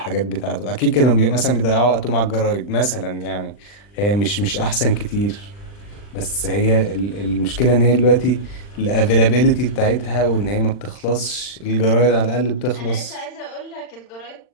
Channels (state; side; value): late; right; 39 ms